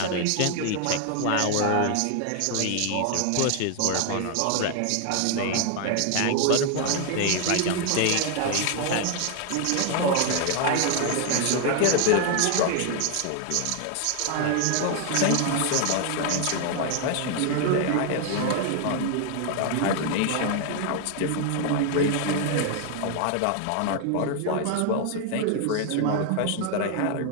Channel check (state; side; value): different; both; correlation 0.00